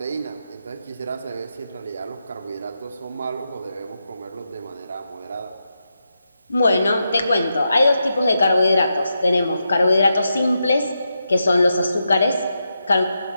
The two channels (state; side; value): inverted; both; correlation -0.86